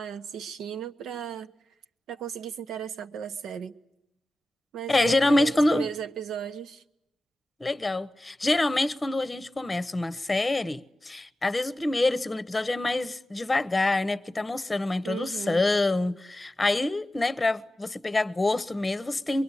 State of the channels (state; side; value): normal; both; correlation 0.94